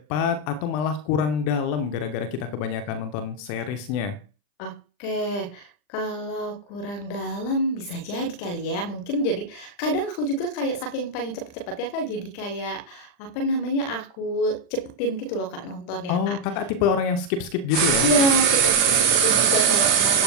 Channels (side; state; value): right; late; 40 ms